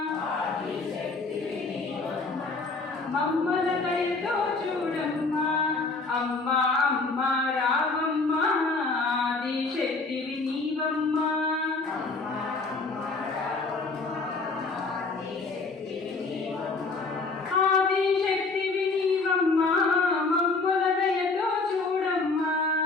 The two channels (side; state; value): right; quieter; 3.8 dB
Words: మమ్ముల దయతో చూడమ్మా అమ్మా అమ్మా రావమ్మా ఆదిశక్తివి నీవమ్మా ఆదిశక్తివి నీవమ్మా మమ్ముల దయతో చూడమ్మా